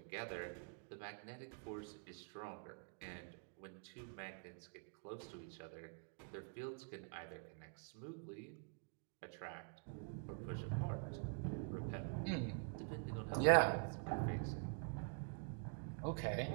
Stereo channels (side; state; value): left; quieter; 38.9 dB